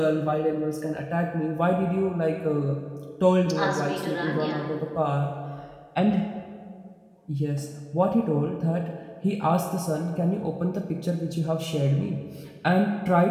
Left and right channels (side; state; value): both; identical; correlation 1.00